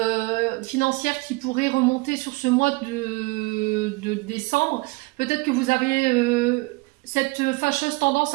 financière qui pourraient remonter sur ce mois de décembre. Peut-être que vous avez cette fâcheuse tendance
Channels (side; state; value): left; quieter; 25.3 dB